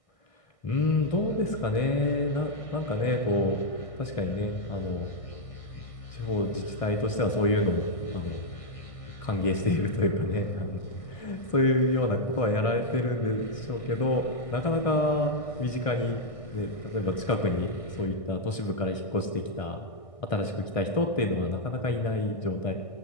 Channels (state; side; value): late; right; 1.6 ms